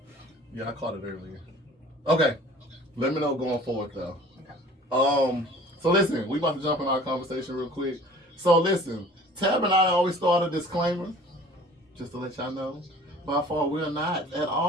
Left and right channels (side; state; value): both; normal; correlation 0.48